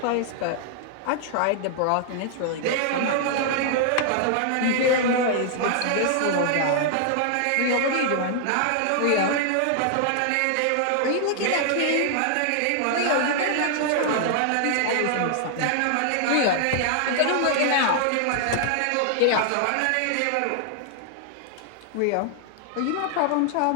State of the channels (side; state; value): both; different; correlation 0.00